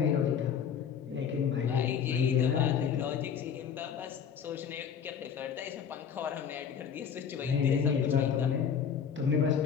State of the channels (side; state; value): right; quieter; 7.5 dB